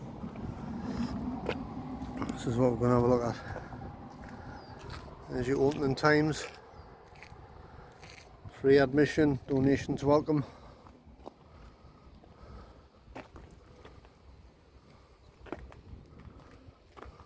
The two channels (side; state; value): both; identical; correlation 1.00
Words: This is what we're going to have a look at. There's your opening times, free admission, donations welcome.